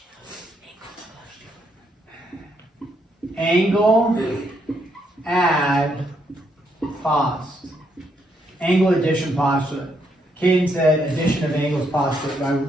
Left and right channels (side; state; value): both; normal; correlation 0.75